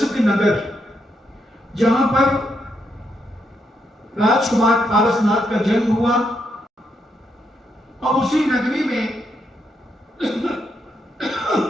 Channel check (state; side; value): normal; both; correlation 0.79